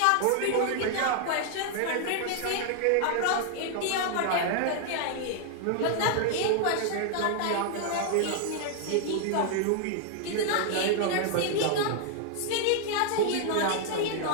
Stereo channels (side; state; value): both; different; correlation 0.00